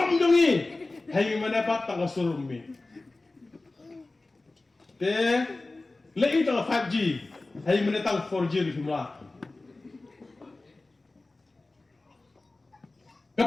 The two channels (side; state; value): right; quieter; 3.2 dB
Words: dungi. Hai menepat tak keserumbi. Te. Lei tak 5G. Hai menetang 4G di semula.